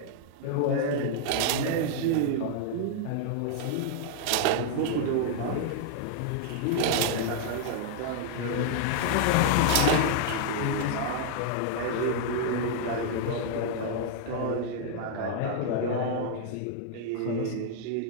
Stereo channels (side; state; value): both; different; correlation 0.00